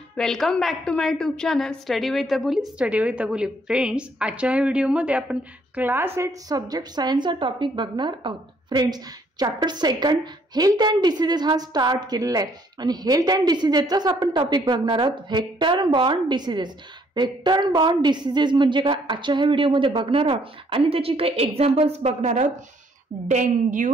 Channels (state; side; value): normal; both; correlation 0.66